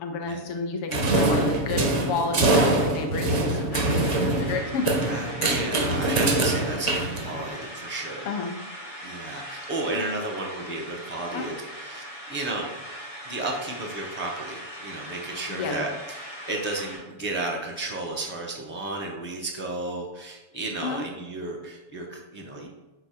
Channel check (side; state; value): right; late; 7.1 ms